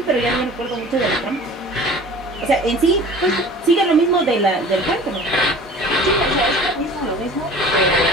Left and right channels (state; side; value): normal; both; correlation 0.43